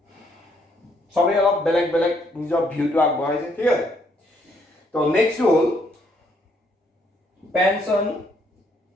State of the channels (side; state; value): both; normal; correlation 0.70